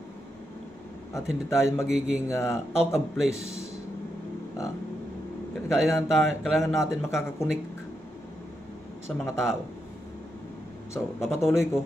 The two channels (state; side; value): normal; both; correlation 0.84